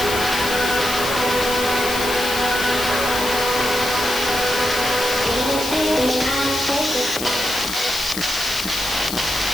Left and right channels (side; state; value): left; noise; hiss, 6 dB below the sound